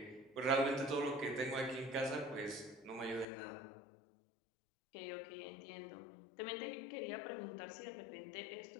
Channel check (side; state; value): right; drops out; at 3.2 s